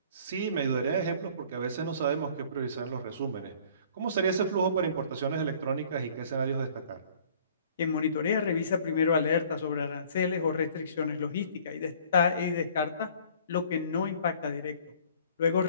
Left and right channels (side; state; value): both; inverted; correlation -0.54